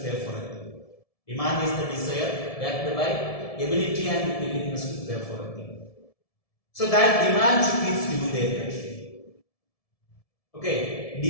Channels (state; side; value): late; right; 1.7 ms